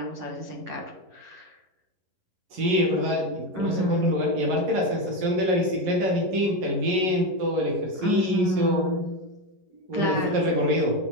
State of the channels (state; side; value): late; left; 11 ms